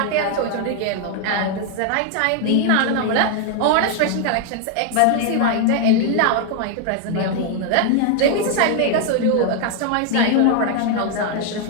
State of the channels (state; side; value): different; both; correlation 0.00